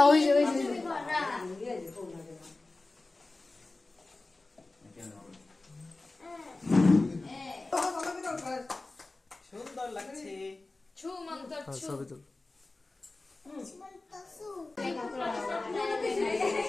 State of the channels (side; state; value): right; quieter; 3.2 dB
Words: ওই যে সুন্দর লাগছে ছুমন্ত ছবি তুল